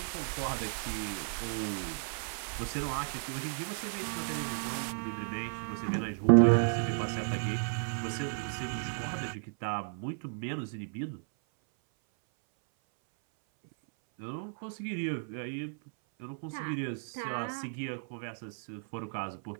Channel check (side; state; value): left; silent; 55 dB below the other